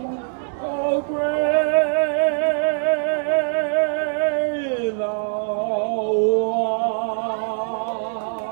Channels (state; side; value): silent; left; digital silence